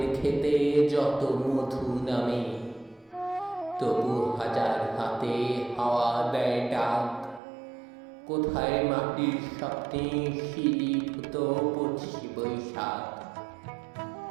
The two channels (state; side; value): drops out; left; at 7.4 s